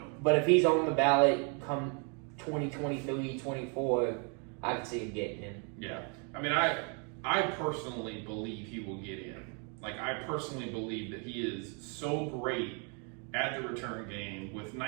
he's on the ballot come 2023, 24, I can see him getting in. Yeah. I mean, I personally believe he will get in. Like, I personally believe that he is so great at the return game with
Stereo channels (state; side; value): quieter; left; 37.5 dB